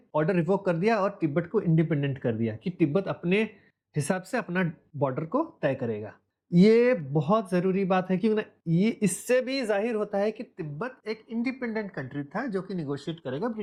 ऑर्डर रिवोक कर दिया और तिब्बत को इंडिपेंडेंट कर दिया कि तिब्बत अपने हिसाब से अपना बॉर्डर को तय करेगा। ये बहुत जरूरी बात है क्योंकि ये इससे भी जाहिर होता है कि तिब्बत एक इंडिपेंडेंट कंट्री था जो कि निगोशिएट करेगा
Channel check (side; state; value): both; identical; correlation 1.00